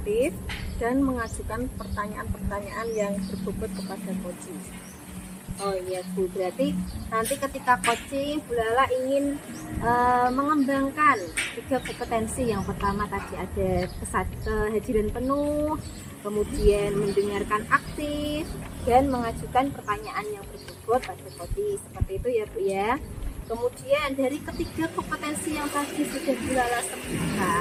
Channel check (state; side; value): identical; both; correlation 1.00